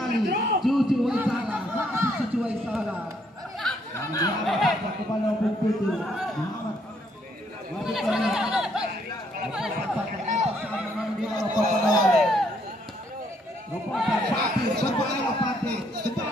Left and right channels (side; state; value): both; normal; correlation 0.70